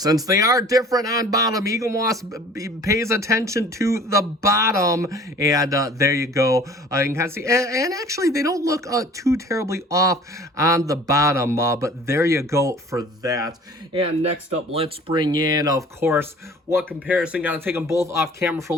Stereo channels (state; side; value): normal; both; correlation 0.48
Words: they are different on bottom, Eaglemoss pays attention to the bottom, and there you go. You can kind of see, and actually they don't look too terribly off on the bottom, but there you go for that. And next up, let's bring in, of course, what comparison, gotta take them both off camera for a